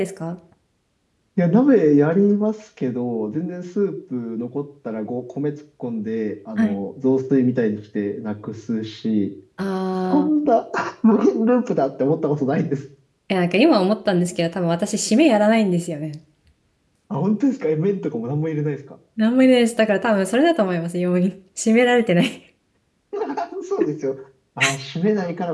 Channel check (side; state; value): both; identical; correlation 1.00